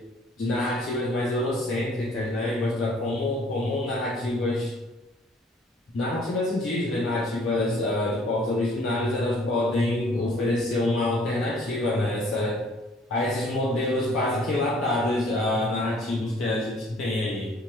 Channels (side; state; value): both; normal; correlation 0.57